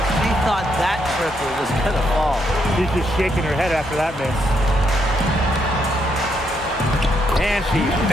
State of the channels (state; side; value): normal; both; correlation 0.76